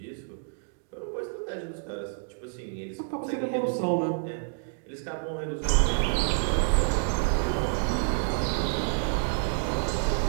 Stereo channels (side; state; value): left; silent; digital silence